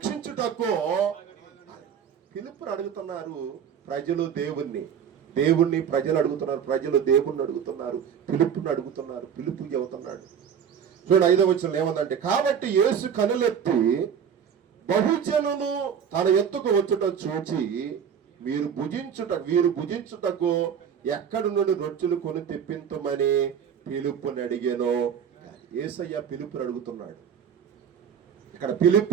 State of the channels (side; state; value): left; quieter; 7.8 dB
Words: పిలుపుని అడుగుతున్నారు ప్రజలు దేవుణ్ణి ప్రజలు అడుగుతున్నారు. ప్రజలు దేవుణ్ణి అడుగుతున్నారు, పిలుపుని అడుగుతున్నారు. పిలుపు చెబుతున్నాడు. చూడండి 5వ వచనంలో ఏమందంటే, కాబట్టి యేసు కనులెత్తి బహుజనులు తన ఎత్తుకు వచ్చుట చూచి వీరు భుజించుటకు ఎక్కడి నుండి రొట్టెలు కొని తెప్పించమని పిలుపుని అడిగాను. యేసయ్య పిలుపుని అడుగుతున్నాడు. ఇక్కడ